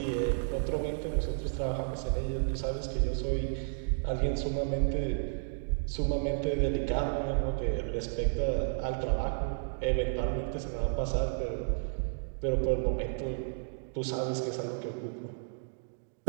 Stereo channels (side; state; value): left; silent; digital silence